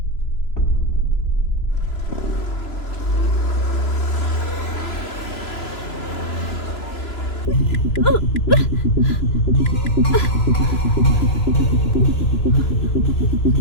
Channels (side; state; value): right; late; 2.9 ms